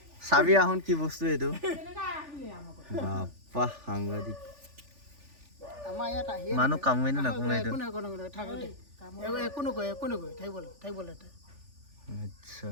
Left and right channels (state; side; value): late; left; 3.4 ms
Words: চাবি আহোন কি বস্তু এইটো বাপ্পা সাংঘাতিক আমাৰ ইয়াত আহি মানুহ কামোৱে নে নাকামোৱে এইটো একো নাই থাক দেই একো নকয় থাকিবলৈ আচ্ছা